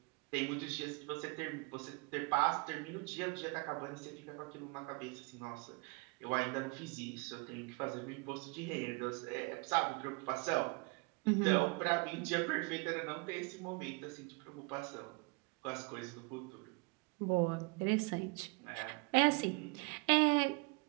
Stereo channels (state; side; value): quieter; left; 29.7 dB